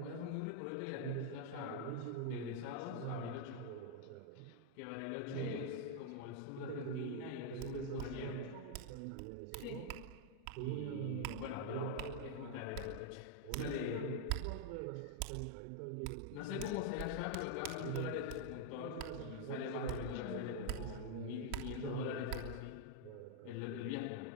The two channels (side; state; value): both; different; correlation 0.00